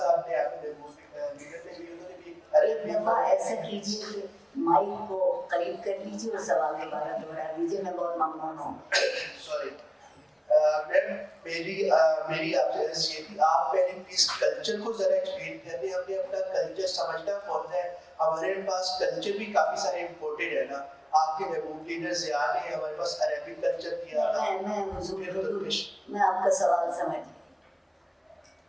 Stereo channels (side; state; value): both; identical; correlation 1.00